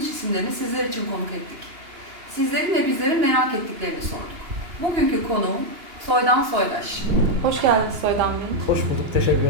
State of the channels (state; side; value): late; left; 2.9 ms